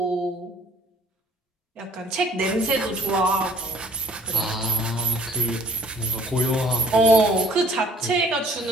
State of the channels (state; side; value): normal; both; correlation 0.56